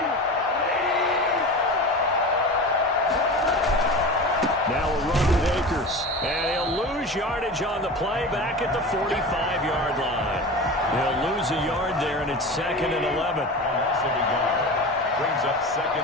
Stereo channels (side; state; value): both; normal; correlation 0.31